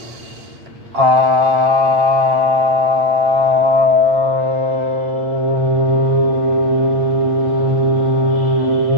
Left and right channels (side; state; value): left; late; 9.0 ms